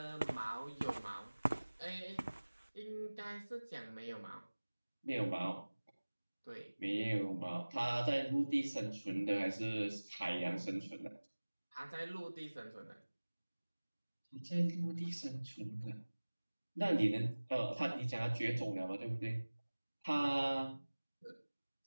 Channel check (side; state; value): both; inverted; correlation -1.00